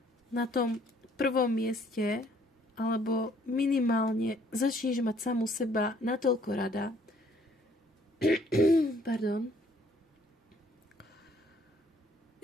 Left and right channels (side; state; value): both; normal; correlation 0.63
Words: na tom prvom mieste, alebo minimálne začneš mať samu seba natoľko rada, pardon,